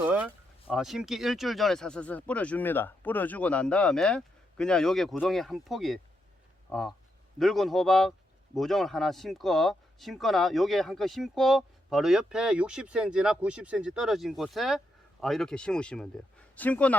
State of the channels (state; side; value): normal; both; correlation 0.81